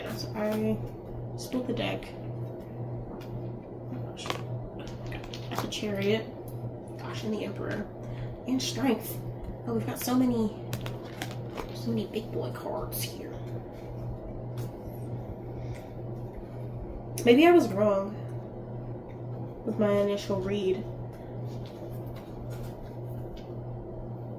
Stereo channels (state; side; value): identical; both; correlation 1.00